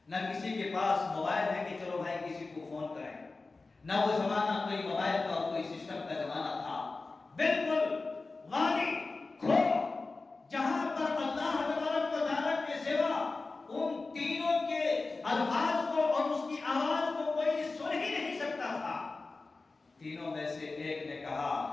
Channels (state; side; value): quieter; right; 3.7 dB